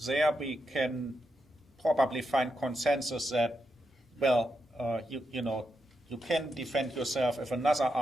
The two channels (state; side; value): normal; both; correlation 0.84